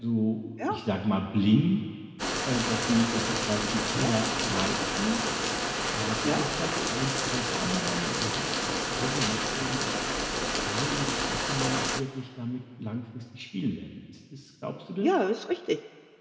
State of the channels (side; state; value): both; identical; correlation 1.00